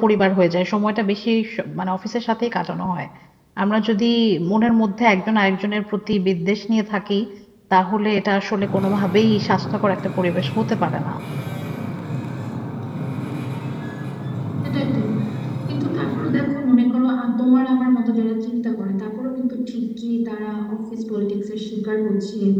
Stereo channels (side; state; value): both; identical; correlation 1.00